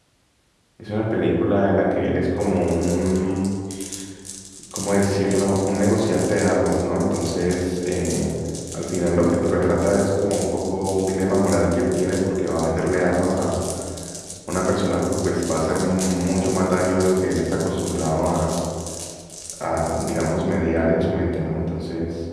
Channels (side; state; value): both; identical; correlation 1.00